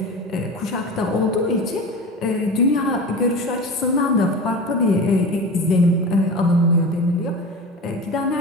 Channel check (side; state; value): both; normal; correlation 0.30